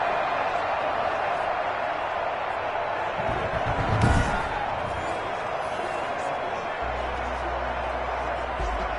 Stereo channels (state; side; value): identical; both; correlation 1.00